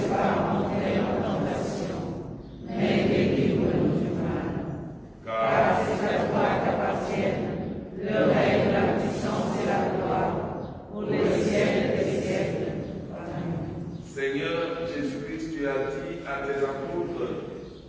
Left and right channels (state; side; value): identical; both; correlation 1.00